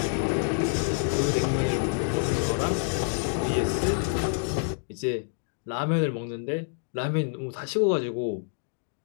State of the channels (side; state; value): right; silent; digital silence